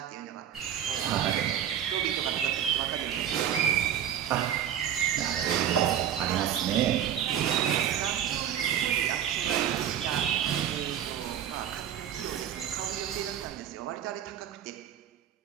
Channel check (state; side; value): quieter; left; 9.7 dB